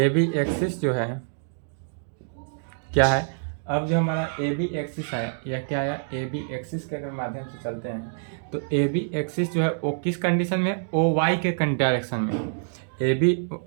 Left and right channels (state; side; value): silent; left; digital silence